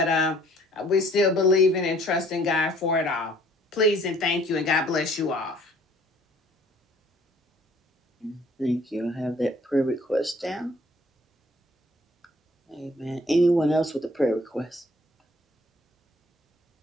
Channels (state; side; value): normal; both; correlation 0.57